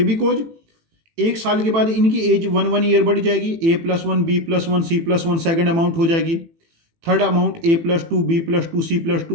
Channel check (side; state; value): left; late; 18 ms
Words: बिकॉज एक साल के बाद इनकी एज 1 ईयर बढ़ जाएगी। A+1, B+1, C+1 second amount हो जाएगी, third amount A+2, B+2,